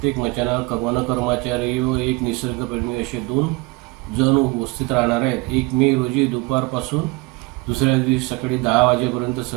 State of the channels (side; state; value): left; quieter; 24.2 dB